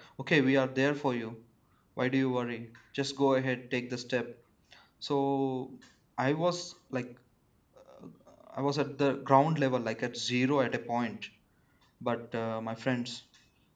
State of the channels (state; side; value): identical; both; correlation 1.00